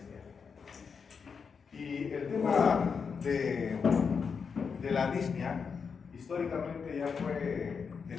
Y el tema de la disnea históricamente ya fue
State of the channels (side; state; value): right; quieter; 5.9 dB